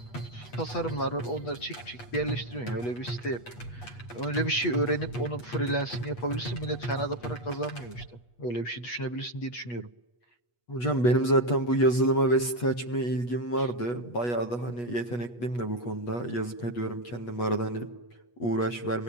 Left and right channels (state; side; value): late; right; 8.3 ms